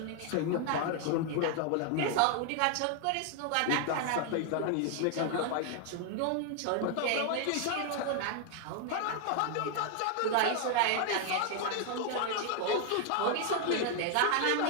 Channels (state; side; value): different; both; correlation 0.00